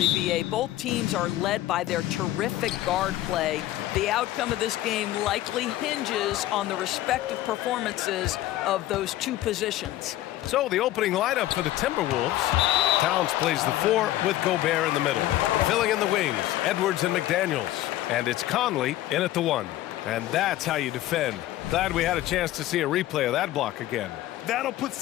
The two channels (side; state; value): right; quieter; 14.8 dB